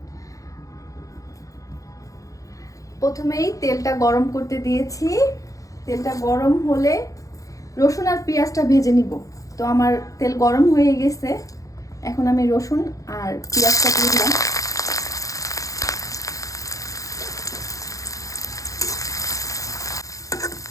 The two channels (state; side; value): late; right; 0.16 ms